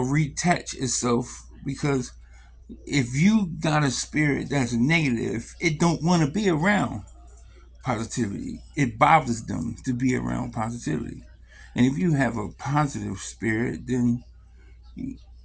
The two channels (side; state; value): both; identical; correlation 1.00